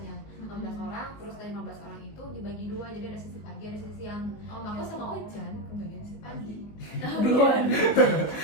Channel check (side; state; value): right; late; 19 ms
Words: 15 orang, terus dari 15 orang itu dibagi 2, jadi ada sesi pagi, ada sesi siang. Oh, Aku gitu. sama Ojan kebagian sesi pagi. Duluan.